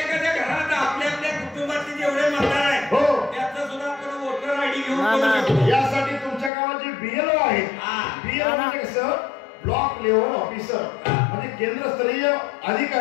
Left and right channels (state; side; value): drops out; right; at 6.5 s